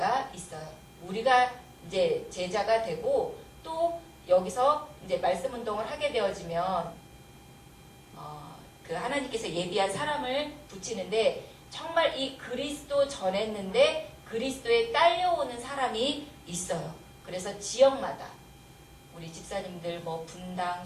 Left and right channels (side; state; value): both; identical; correlation 1.00